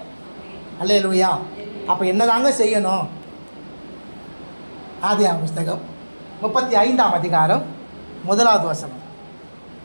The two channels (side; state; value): both; inverted; correlation -1.00